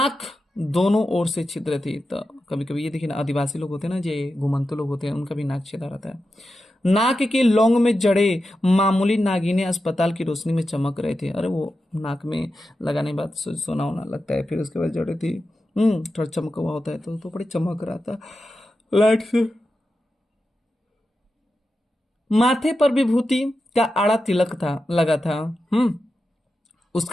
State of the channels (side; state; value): both; normal; correlation 0.90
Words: दोनों ओर से छिद्र थी। तो कभी कभी ये देखिए ना, आदिवासी लोग होते हैं ना, जे घुमंतु लोग होते हैं, उनका भी नाक छेदा रहता है। नाक के लौंग में जड़े मामूली नागिनें अस्पताल की रोशनी में चमक रहे थे। अरे वो नाक में लगाने के बाद सोना होना लगता है, फिर उसके बाद जड़े थी, थोड़ा चमका हुआ होता है, तो बड़ी चमक रहा था लाइट से। माथे पर विभूति का आड़ा तिलक था लगा था।